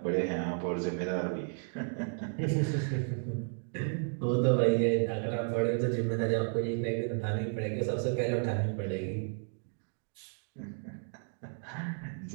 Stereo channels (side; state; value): left; silent; 56 dB below the other